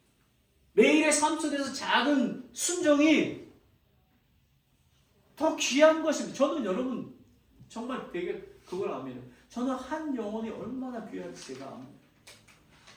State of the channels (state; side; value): identical; both; correlation 1.00